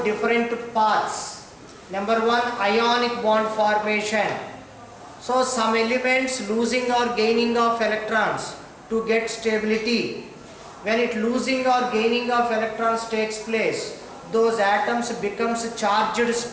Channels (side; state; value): both; identical; correlation 1.00